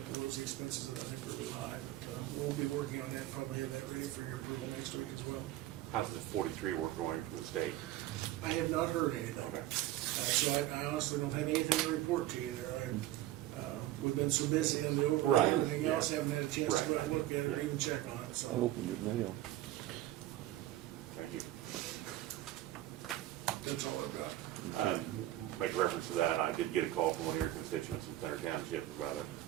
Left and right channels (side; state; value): left; quieter; 14.7 dB